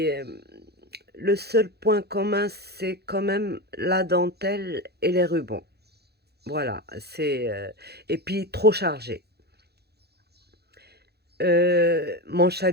le seul point commun, c'est quand même la dentelle et les rubans. Voilà, et puis trop chargé. Mon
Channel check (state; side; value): late; left; 0.47 ms